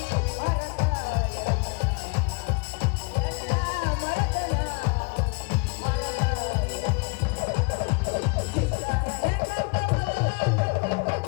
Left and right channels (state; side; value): quieter; right; 30.9 dB